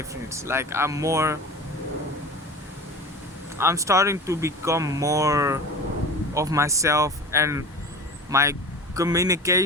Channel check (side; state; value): both; normal; correlation 0.34